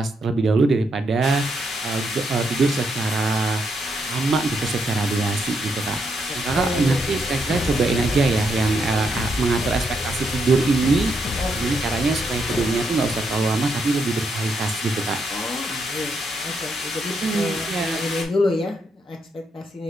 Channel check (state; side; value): normal; both; correlation 0.79